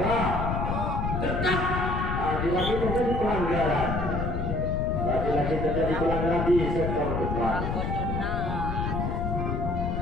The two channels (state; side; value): noise; left; rumble, 1 dB below the sound